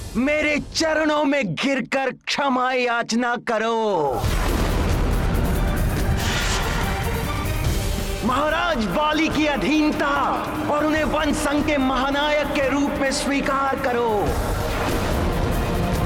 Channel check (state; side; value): identical; both; correlation 1.00